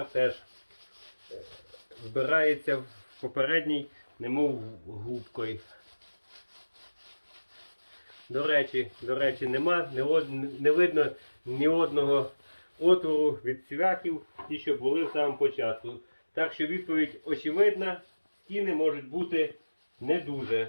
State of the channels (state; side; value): inverted; both; correlation -1.00